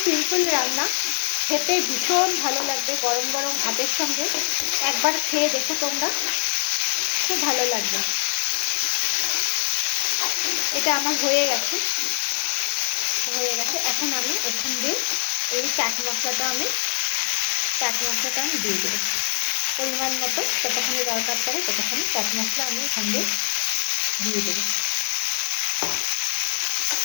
সিম্পল রান্না, খেতে ভীষণ ভালো লাগবে গরম গরম ভাতের সঙ্গে। একবার খেয়ে দেখো তোমরা, খুব ভালো লাগবে। এটা আমার হয়ে গেছে। এখন আমি এখান দিয়ে এই চাট মশলাটা আমি দিয়ে দেবো পরিমাণ মতো। যতখানি দরকার পড়ে ততখানি চাট মশলা আমি এখান দিয়ে দেবো।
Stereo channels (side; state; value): right; silent; 63 dB below the other